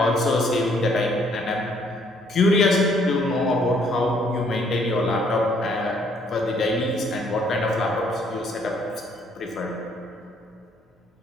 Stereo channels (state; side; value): normal; both; correlation 0.65